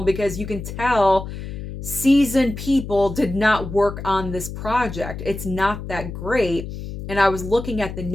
because you can tell seasoned people did not work on this project. It's not that great. And I was looking at the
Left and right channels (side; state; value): left; noise; hum, 8 dB below the sound